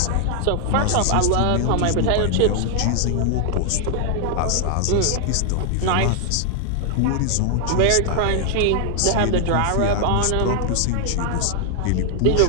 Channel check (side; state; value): both; different; correlation 0.00